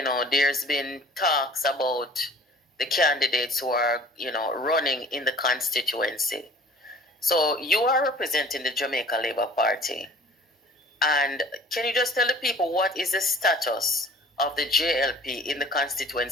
there's been talks about the candidates who are, running in the constituency. So you are representing the Jamaica Labour Party. And can you just tell the people what is the status of the JLP in the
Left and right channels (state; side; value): normal; both; correlation 0.48